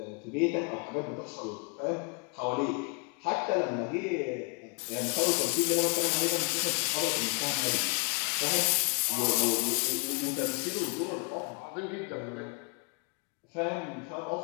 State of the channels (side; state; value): right; quieter; 35.2 dB